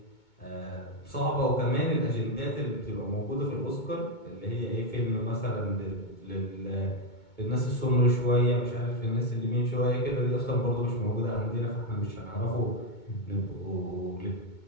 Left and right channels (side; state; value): right; late; 2.2 ms